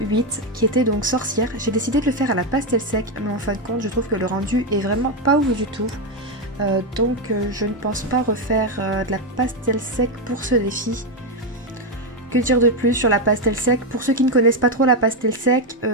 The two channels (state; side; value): normal; both; correlation 0.06